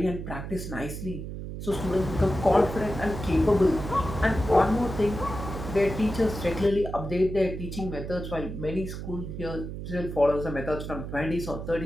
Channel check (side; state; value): right; noise; hum, 7 dB below the sound